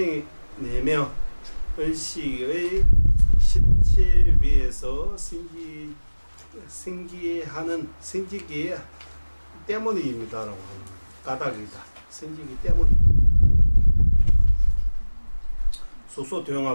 의식의 실체 위에서 생기기 때문입니다라고 하는 까닭이다. 생기기 때문입니다.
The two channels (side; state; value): both; inverted; correlation -1.00